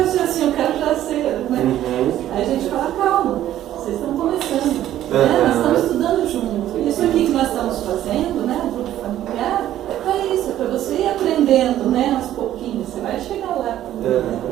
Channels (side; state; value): left; quieter; 12.5 dB